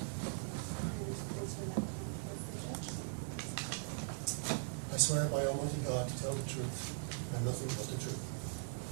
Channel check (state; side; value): silent; left; digital silence